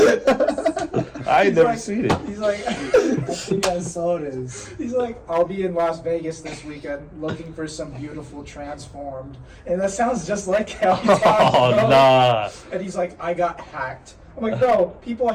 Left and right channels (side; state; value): both; identical; correlation 1.00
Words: I ain't never seen it. He's like, I think I saw this. He's like, I'll be in Las Vegas this weekend looking for some beautiful transformed, and that sounds just like how he talks. Oh nah. And he's like, I got hacked. I'm like, bro, people